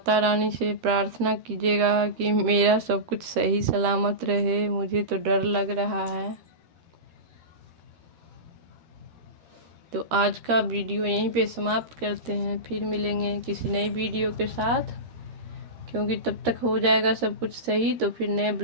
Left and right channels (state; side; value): late; left; 13 ms